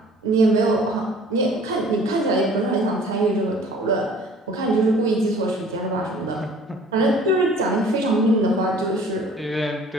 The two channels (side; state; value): both; normal; correlation 0.51